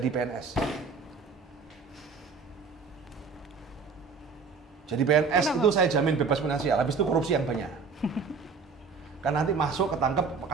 PNS. Jadi PNS Kenapa? itu saya jamin bebas finansial, habis itu korupsi yang banyak. Kan nanti masuk ketangkep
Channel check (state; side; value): quieter; left; 5.0 dB